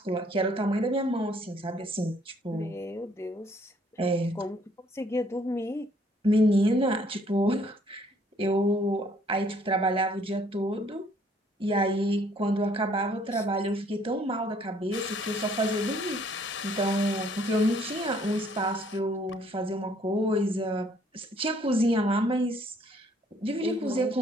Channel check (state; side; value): normal; both; correlation 0.63